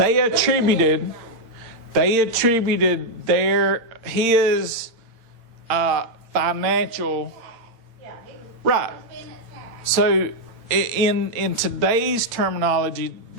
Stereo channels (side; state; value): left; late; 8.8 ms